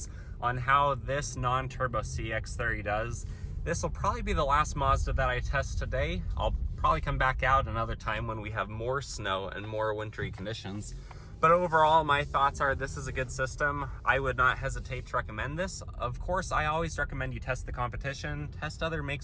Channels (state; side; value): identical; both; correlation 1.00